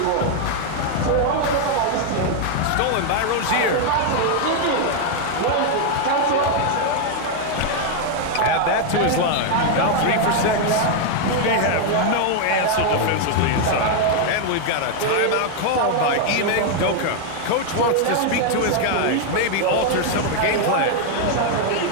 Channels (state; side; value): different; both; correlation 0.00